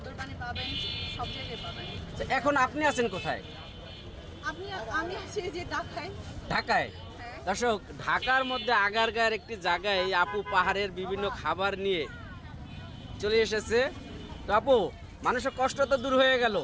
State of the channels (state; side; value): identical; both; correlation 1.00